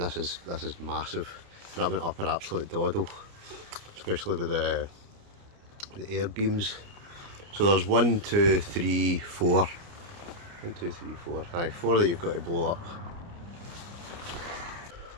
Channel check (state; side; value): late; left; 29 ms